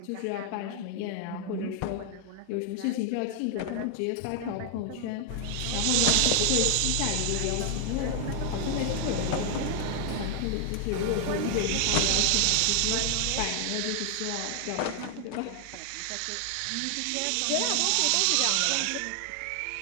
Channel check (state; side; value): different; both; correlation 0.00